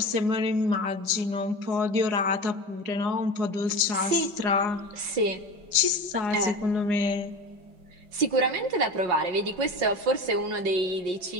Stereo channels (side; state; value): left; late; 5.6 ms